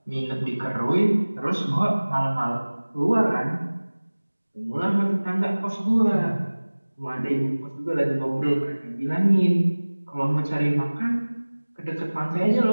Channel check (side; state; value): both; inverted; correlation -1.00